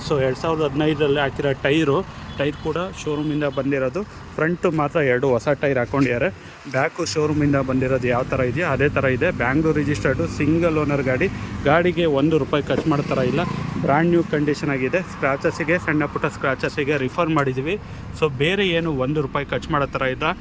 ಸೊ 2015ರಲ್ಲಿ ಹಾಕಿರೋ ಟೈರ್ ಕೂಡ ಶೋರೂಮಿಂದ ಬಂದಿರೋದು. ಫ್ರಂಟು ಮಾತ್ರ 2 ಹೊಸ ಟೈರ್ ಹಾಕ್ಕೊಂಡಿದ್ದಾರೆ. ಬ್ಯಾಕು ಶೋರೂಮಿಂದ ಬಂದಿರೋದು ಯಾವ ಥರ ಇದೆಯೋ ಅದೇ ಥರ ಇದೆ. ಬ್ಯಾಂಗ್ಳೂರ್ ರಿಜಿಸ್ಟರ್ಡು, ಸಿಂಗಲ್ ಓನರ್ ಗಾಡಿಗೆ ₹1 ಖರ್ಚು ಮಾಡೋ ಥರ ಇಲ್ಲ. ಬ್ರ್ಯಾಂಡ್ ನ್ಯೂ ಕಂಡೀಷನ್ ಆಗಿದೆ. ಸ್ಕ್ರಾಚಸ್ಸಿಗೆ, ಸಣ್ಣ ಪುಟ್ಟ ಸ್ಕ್ರಾಚಸ್ಸಿಗೆ ರಿಫರ್ ಮಾಡಿದ್ದೀವಿ. ಸೊ ಬೇರೆ ಏನು ₹1 ಖರ್ಚು ಮಾಡೋ ಥರ ಇಲ್ಲ.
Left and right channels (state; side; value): identical; both; correlation 1.00